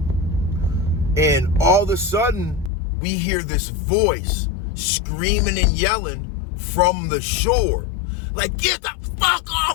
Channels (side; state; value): right; drops out; at 2.7 s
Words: And all of a sudden, we hear this voice screaming and yelling from the shore. Like, get the fuck